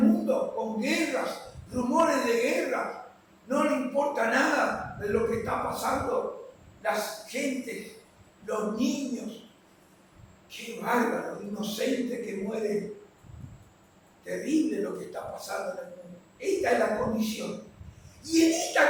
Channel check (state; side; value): identical; both; correlation 1.00